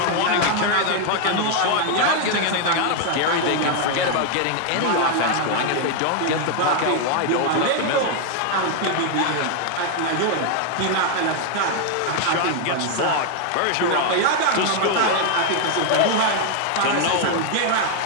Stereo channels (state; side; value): different; both; correlation 0.00